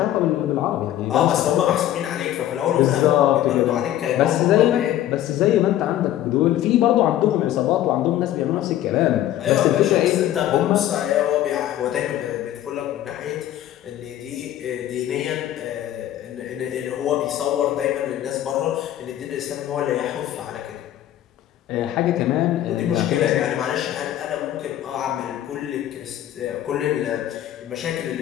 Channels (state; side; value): quieter; right; 12.6 dB